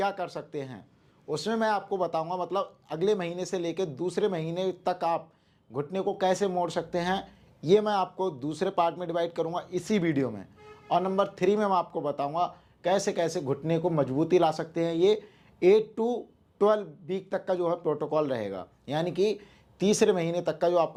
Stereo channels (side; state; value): both; identical; correlation 1.00